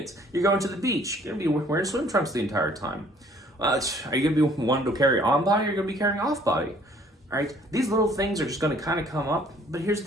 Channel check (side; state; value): both; normal; correlation 0.58